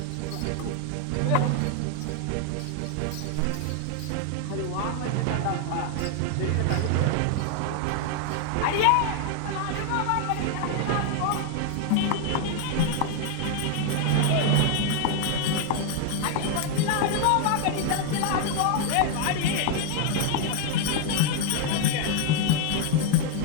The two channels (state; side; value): different; both; correlation 0.01